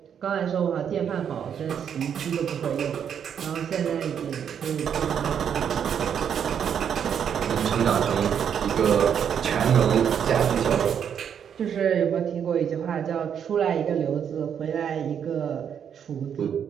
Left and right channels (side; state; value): left; quieter; 8.2 dB